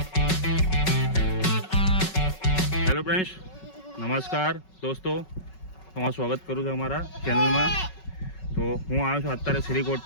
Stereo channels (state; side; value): late; right; 5.4 ms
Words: friends, નમસ્કાર દોસ્તો, તમારું સ્વાગત કરું છું અમારા ચેનલમાં. તો હું આવ્યો છું અત્યારે શ્રીકોટ